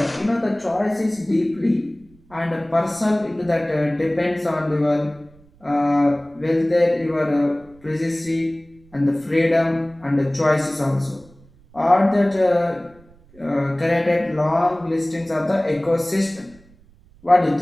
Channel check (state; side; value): noise; right; rumble, 28 dB below the sound